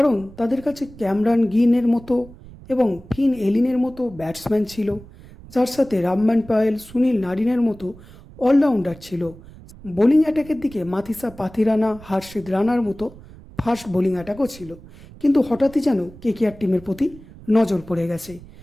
তাদের কাছে ক্যামরান গিনের মতো এবং ফিন এলিনের মতো ব্যাটসম্যান ছিল, যার সাথে রামমান পায়েল, সুনীল নারিনের মতো অলরাউন্ডার ছিল। বোলিং অ্যাটাকের দিকে মাথিসা পাথিরানা, হার্ষিদ রানার মতো ফাস্ট বোলিং অ্যাটাকও ছিল। কিন্তু হঠাৎই যেন কেকেআর টিমের প্রতি নজর পড়ে গেছে।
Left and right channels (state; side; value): noise; right; rumble, 20 dB below the sound